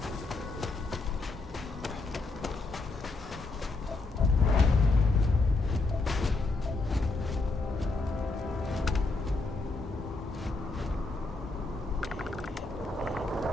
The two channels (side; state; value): right; quieter; 3.4 dB